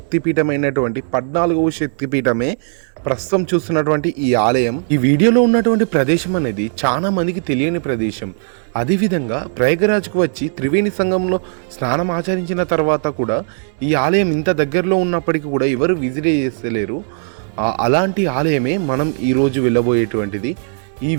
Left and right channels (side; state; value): left; silent; 68 dB below the other